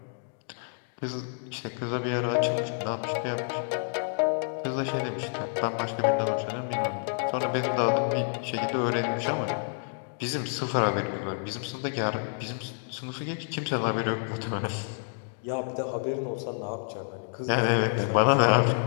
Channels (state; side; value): silent; right; digital silence